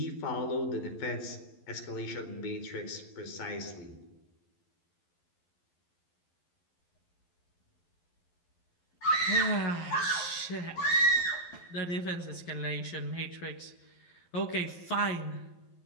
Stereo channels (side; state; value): right; late; 11 ms